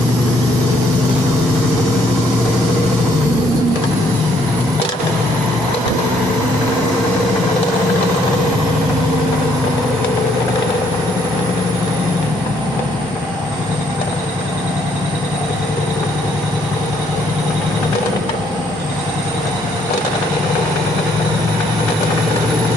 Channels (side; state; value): both; normal; correlation 0.68